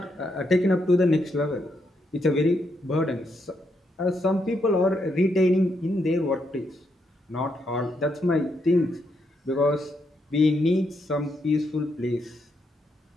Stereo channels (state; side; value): normal; both; correlation 0.79